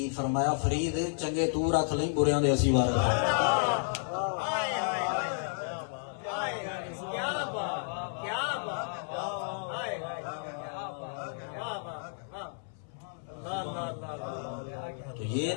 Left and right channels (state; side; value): silent; right; 57 dB below the other